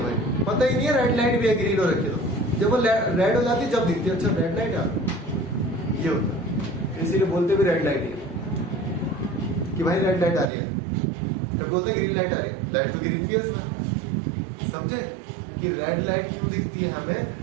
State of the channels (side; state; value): left; drops out; at 10.5 s